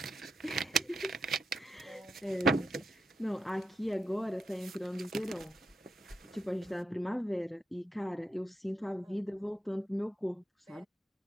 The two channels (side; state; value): both; normal; correlation 0.85